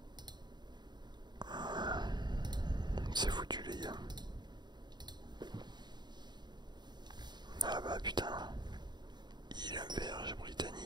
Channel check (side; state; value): left; late; 0.21 ms